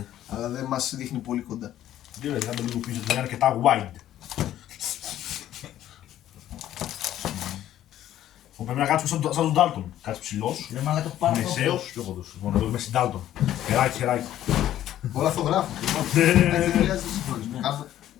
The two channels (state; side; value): quieter; right; 12.4 dB